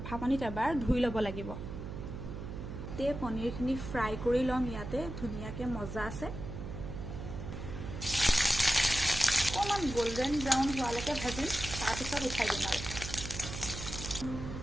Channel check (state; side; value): noise; right; hum, 8 dB below the sound